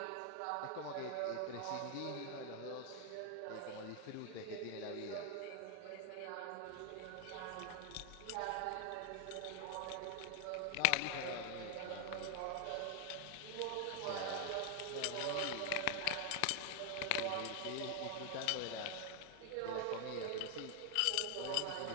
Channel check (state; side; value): different; both; correlation 0.00